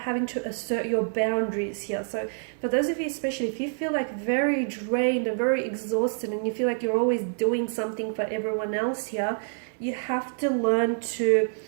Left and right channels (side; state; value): left; silent; 60 dB below the other